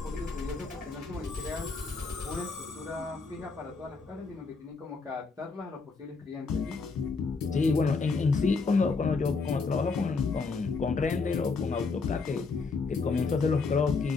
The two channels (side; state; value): right; quieter; 4.3 dB